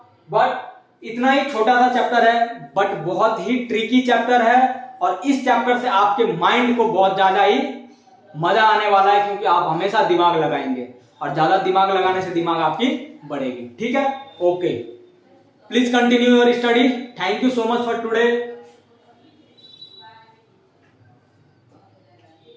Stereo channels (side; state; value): both; identical; correlation 1.00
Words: बट इतना ही छोटा सा चैप्टर है, बट बहुत ही ट्रिकी चैप्टर है, और इस चैप्टर से आपके माइंड को बहुत ज्यादा ही मजा आने वाला है, क्योंकि आप हमेशा दिमाग लगाएंगे, और ज्यादा दिमाग लगाने से दिमाग आपकी बढ़ेगी। ठीक है, okay, please continue your study. Thank you so much for today.